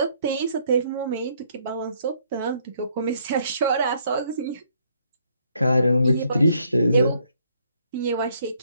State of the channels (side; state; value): both; inverted; correlation -0.68